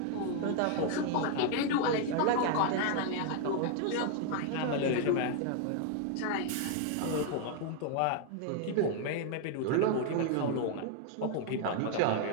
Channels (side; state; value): both; different; correlation 0.00